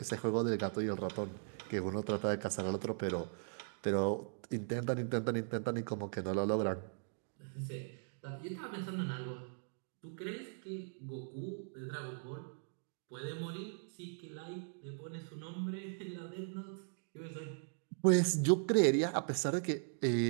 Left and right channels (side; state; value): left; silent; digital silence